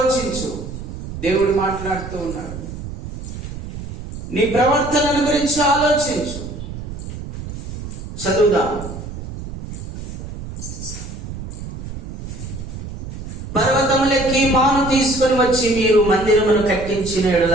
దేవుడు మాట్లాడుతూ ఉన్నాడు. నీ ప్రవర్తనను గురించి ఆలోచించు. చదువుదాం. పర్వతములెక్కి మాను తీసుకొని వచ్చి మీరు మందిరమును కట్టించిన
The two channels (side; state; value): right; noise; rumble, 9 dB below the sound